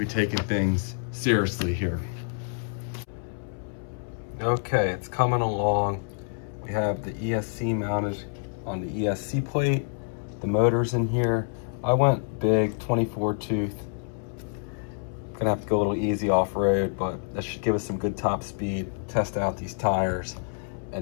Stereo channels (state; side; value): silent; right; 60 dB below the other